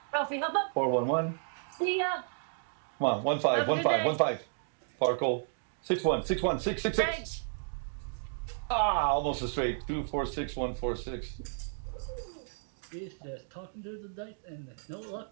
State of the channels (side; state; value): left; silent; digital silence